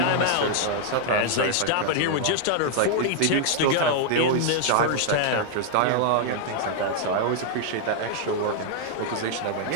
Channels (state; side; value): different; both; correlation 0.00